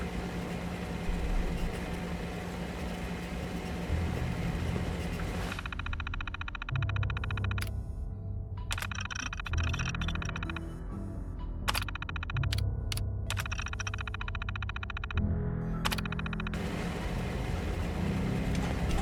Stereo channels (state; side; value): identical; both; correlation 1.00